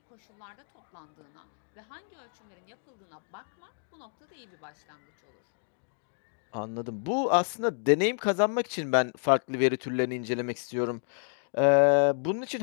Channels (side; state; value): right; silent; digital silence